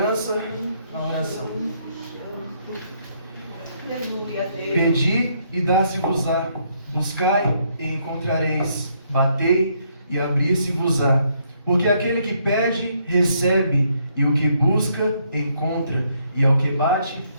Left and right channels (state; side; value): inverted; both; correlation -0.72